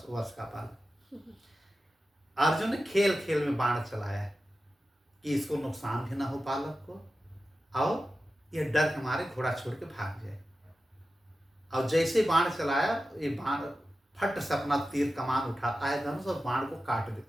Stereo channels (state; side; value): normal; both; correlation 0.93